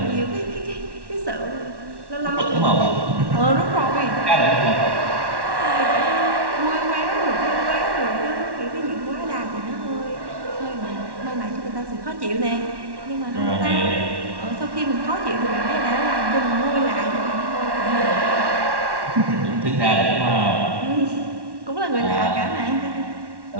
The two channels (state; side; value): late; left; 1.1 ms